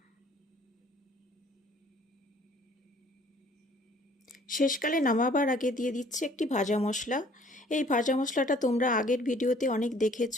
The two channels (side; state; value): both; normal; correlation 0.57